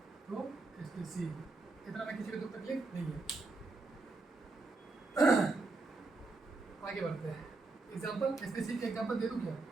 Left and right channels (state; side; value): quieter; left; 3.5 dB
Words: तो स्पीसीज। इतना में किसी को तो तकलीफ नहीं है। आगे बढ़ते हैं। एग्जाम्पल स्पीसीज के एग्जाम्पल दे दूँ क्या?